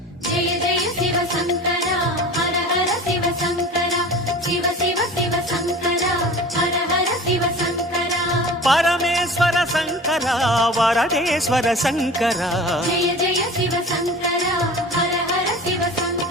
ஜெய ஜெய சிவசங்கரா ஹர ஹர சிவசங்கரா சிவ சிவ சிவசங்கரா ஹர ஹர சிவசங்கரா பரமேஸ்வர சங்கரா வரதேஸ்வர சங்கரா ஜெய ஜெய சிவசங்கரா ஹர ஹர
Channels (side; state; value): both; normal; correlation 0.38